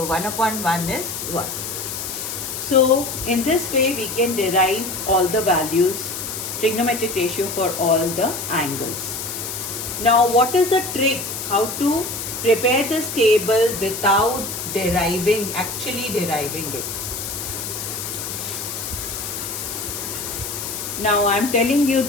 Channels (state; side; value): noise; left; hiss, 6 dB below the sound